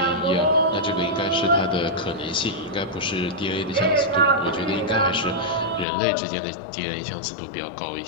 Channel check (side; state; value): right; drops out; at 5.9 s